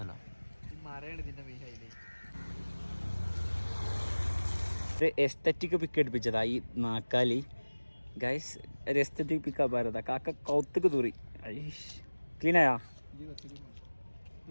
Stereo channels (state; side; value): inverted; both; correlation -1.00